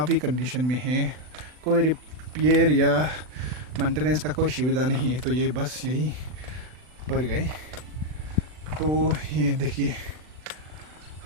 ही कंडीशन में है। कोई रिपेयर या मेंटेनेंस का कोई सुविधा नहीं है, तो ये बस यही पर गए। तो ये देखिए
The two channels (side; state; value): left; late; 39 ms